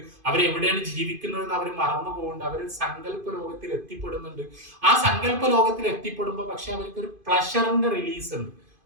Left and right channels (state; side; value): late; left; 2.5 ms